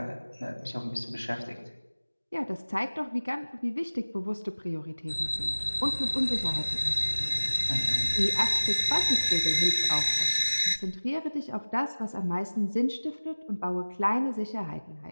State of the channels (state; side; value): inverted; both; correlation -1.00